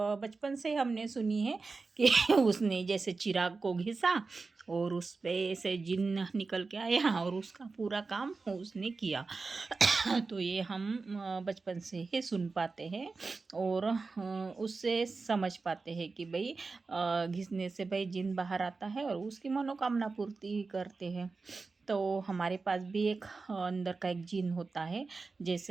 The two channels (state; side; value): quieter; left; 4.1 dB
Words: बचपन से हमने सुनी है कि उसने जैसे चिराग को घिसा और उस पे से जिन निकल के आया और उसका पूरा काम उसने किया। तो ये हम बचपन से ही सुन पाते हैं और उससे समझ पाते हैं कि भाई घिसने से भाई जिन बाहर आता है और उसकी मनोकामना पूर्ति करते हैं। तो हमारे पास भी एक अंदर का एक जिन होता है,